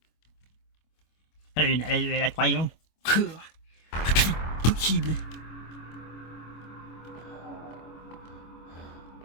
Allez, la troisième. Possible.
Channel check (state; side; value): late; right; 25 ms